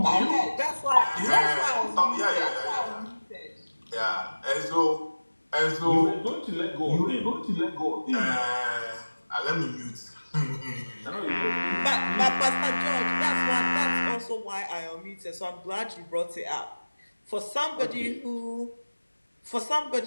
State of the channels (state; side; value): inverted; both; correlation -1.00